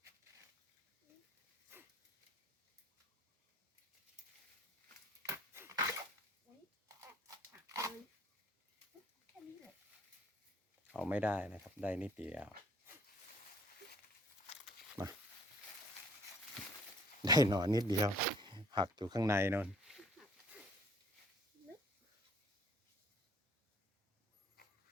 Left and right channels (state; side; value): normal; both; correlation 0.58